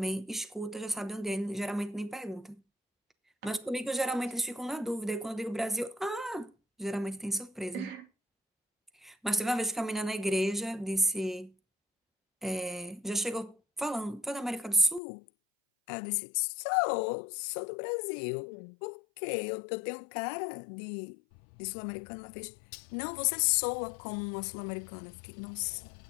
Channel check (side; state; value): right; drops out; at 15.0 s